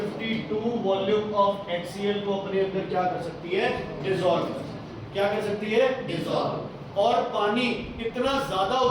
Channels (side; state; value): both; identical; correlation 1.00